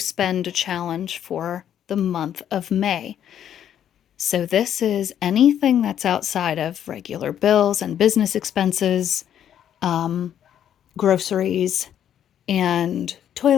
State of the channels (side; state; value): right; quieter; 10.0 dB